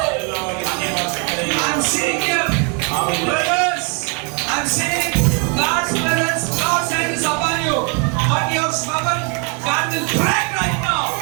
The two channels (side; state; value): left; quieter; 36.0 dB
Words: I'm seeing you. Brothers, I'm seeing God's presence, God's hand is upon you. But your stubborn, God will break right now.